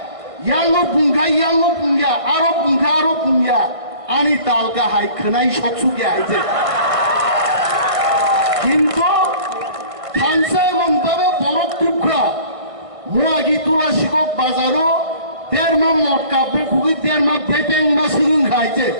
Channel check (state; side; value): late; left; 1.5 ms